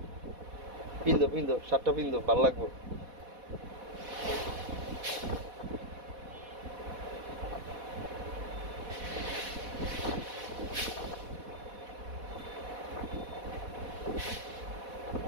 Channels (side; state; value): left; late; 4.1 ms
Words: পিন্দো শার্টটা পিন্দো, ভালো লাগবো।